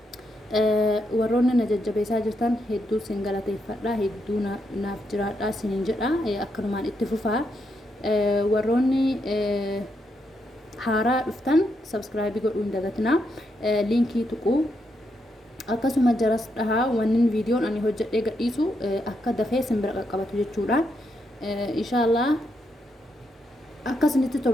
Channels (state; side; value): normal; both; correlation 0.80